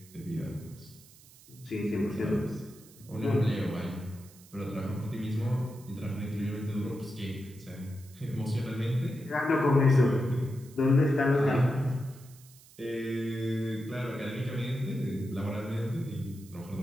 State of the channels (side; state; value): right; noise; hiss, 23 dB below the sound